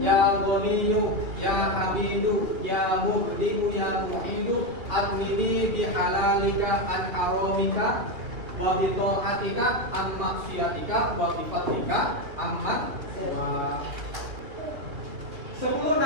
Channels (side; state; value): left; late; 3.1 ms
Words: ya Ghaniyyu ya Hamidu ya Muhdimu ya Muhidu adnini bihalalika an haramika wa bi ta'atika an maksiatika wa bi fadlika amman. 10